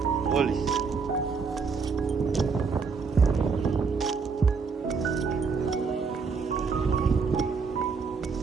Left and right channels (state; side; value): quieter; left; 5.1 dB